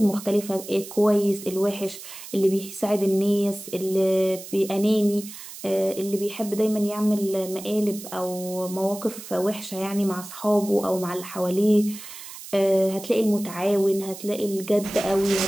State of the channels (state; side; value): noise; right; hiss, 13 dB below the sound